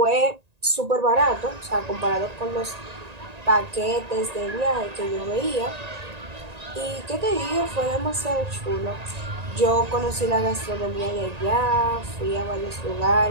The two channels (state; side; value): late; left; 1.9 ms